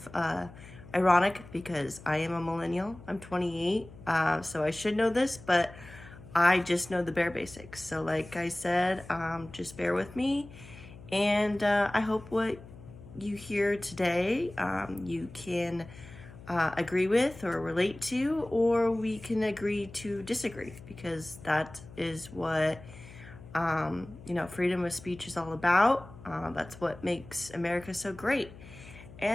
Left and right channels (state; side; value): noise; left; hum, 18 dB below the sound